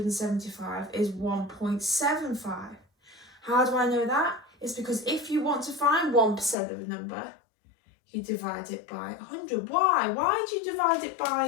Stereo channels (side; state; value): right; drops out; at 6.6 s